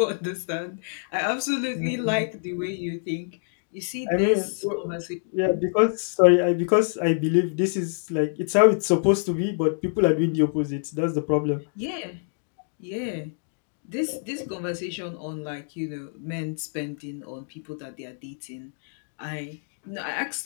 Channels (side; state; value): right; silent; digital silence